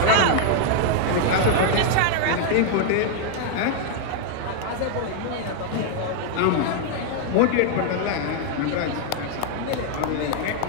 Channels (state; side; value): different; both; correlation 0.00